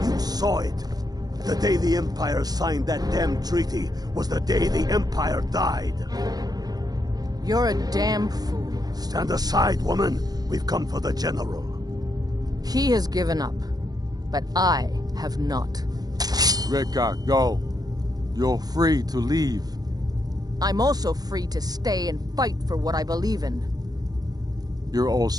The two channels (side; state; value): left; late; 0.19 ms